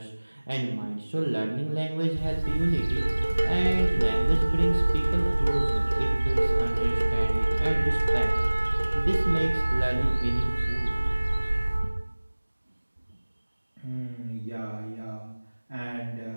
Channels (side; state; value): both; inverted; correlation -1.00